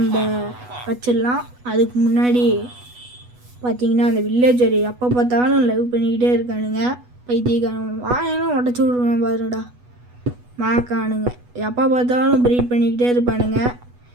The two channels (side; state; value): left; late; 8.2 ms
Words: வச்சிடலாம். அதுக்கு முன்னாடி பார்த்திங்கன்னா அந்த வில்லேஜர் எப்போ பார்த்தாலும் லைவ் பண்ணிக்கிட்டே இருக்கானுங்க. பைத்தியக்காரன் வாயெல்லாம் உடச்சி விட்ருவேன் பாருடா மாக்கானுங்க. எப்போ பார்த்தாலும் ப்ரீட் பண்ணிக்கிட்டே இருப்பானுங்க.